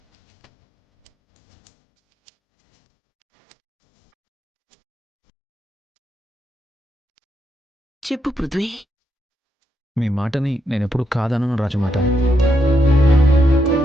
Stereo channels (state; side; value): normal; both; correlation 0.80